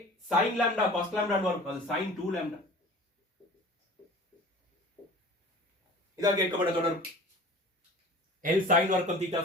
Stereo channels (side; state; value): both; normal; correlation 0.41